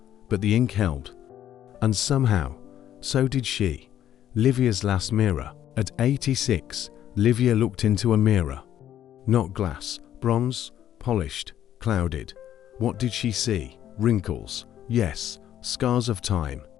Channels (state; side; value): quieter; right; 11.2 dB